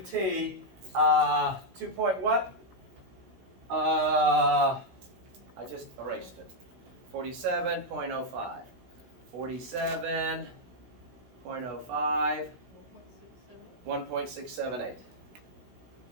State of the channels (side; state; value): left; late; 16 ms